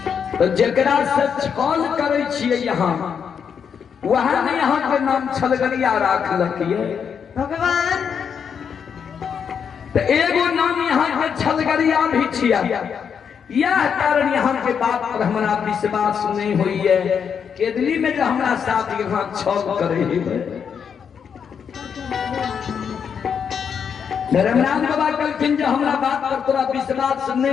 तो जकरा से छल करे छिए यहाँ वहां ने यहाँ के नाम छलगरिया राख लखिए भगवान। तो एगो नाम यहाँ के छलगरिया भी छिया। यह कारण यहाँ के बात पर हमारा विश्वास नहीं हुई है। केदली में जो हमारा साथ यहाँ छल करे धर्मराज बाबा कहलखिन जो हमारा बात पर तोरा विश्वास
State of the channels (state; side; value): quieter; right; 7.1 dB